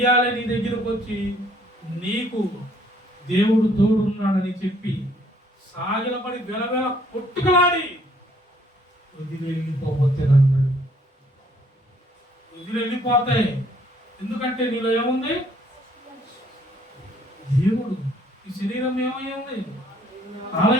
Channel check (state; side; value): normal; both; correlation 0.63